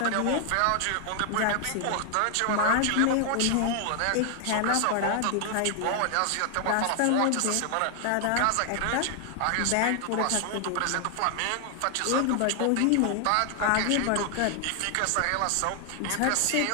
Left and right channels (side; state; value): both; different; correlation 0.00